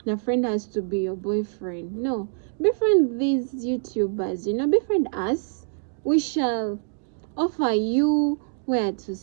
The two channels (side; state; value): left; silent; digital silence